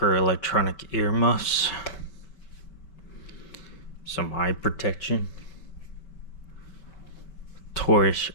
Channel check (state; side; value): late; right; 5.0 ms